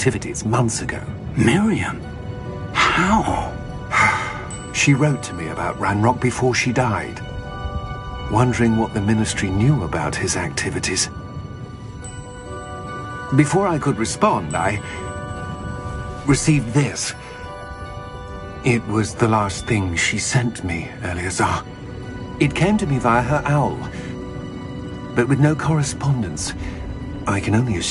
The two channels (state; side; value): identical; both; correlation 1.00